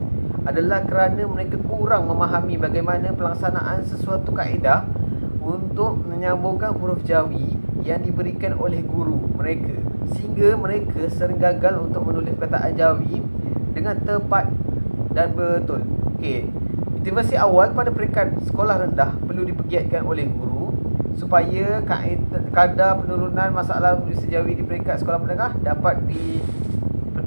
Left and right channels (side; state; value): both; inverted; correlation -1.00